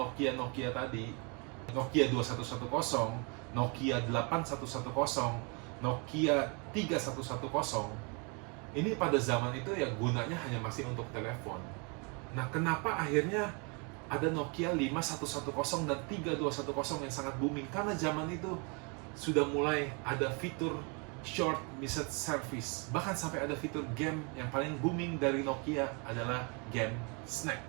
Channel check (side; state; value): left; quieter; 33.2 dB